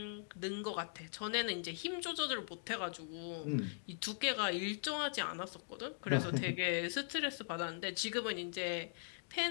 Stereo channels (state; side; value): silent; right; digital silence